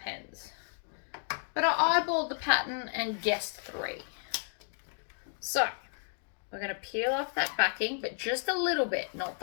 But I eyeballed the pattern and guessed 3. So, we're going to peel off that backing, but just a little bit, not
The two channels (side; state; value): right; silent; 56 dB below the other